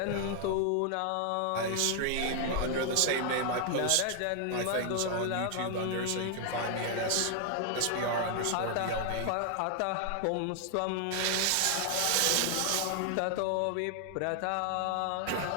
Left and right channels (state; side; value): different; both; correlation 0.00